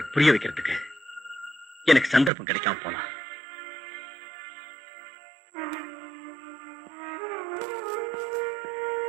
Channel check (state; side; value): drops out; left; at 2.3 s